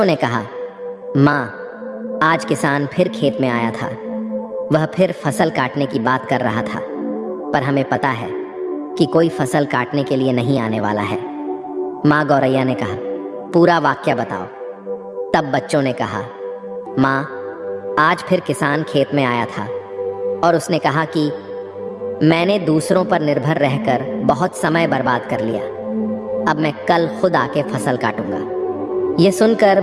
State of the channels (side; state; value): both; identical; correlation 1.00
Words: ने कहा, माँ, आज किसान फिर खेत में आया था। वह फिर फसल काटने की बात कर रहा था, पर हमें पता है कि कोई फसल काटने के लिए नहीं आने वाला है। माँ गौरैया ने कहा, पूरा वाक्य बताओ। तब बच्चों ने कहा, माँ, आज फिर किसान खेत में आया था और उसने कहा कि मैंने दूसरों पर निर्भर रहकर बहुत समय बर्बाद कर लिया। अब मैं कल खुद आके फसल काटूंगा। ये सुनकर